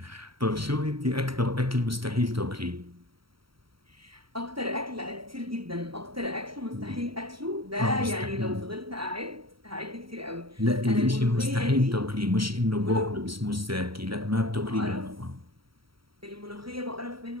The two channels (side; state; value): left; late; 0.75 ms